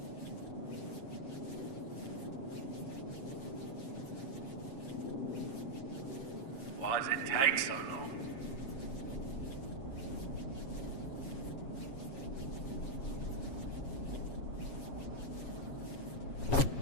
Why does it take so long?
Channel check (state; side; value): late; right; 7.3 ms